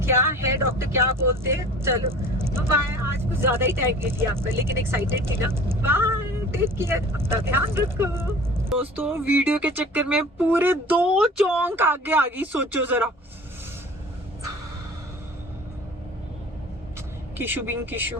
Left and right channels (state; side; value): normal; both; correlation 0.44